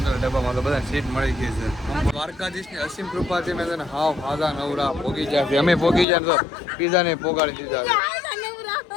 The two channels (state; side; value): drops out; right; at 6.1 s